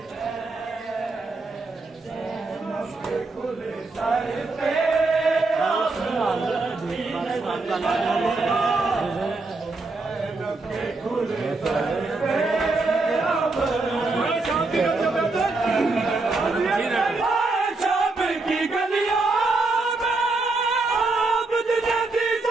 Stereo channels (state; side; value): quieter; left; 3.5 dB